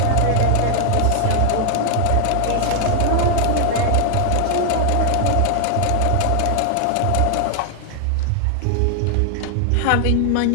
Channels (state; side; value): different; both; correlation 0.00